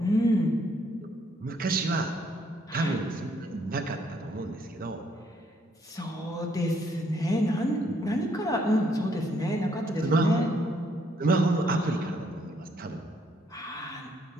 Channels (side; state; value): both; normal; correlation 0.69